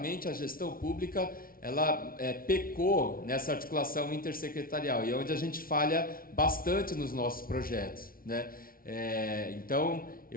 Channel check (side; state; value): right; late; 0.43 ms